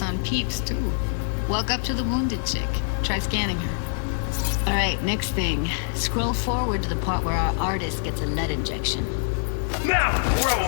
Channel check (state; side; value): silent; right; 60 dB below the other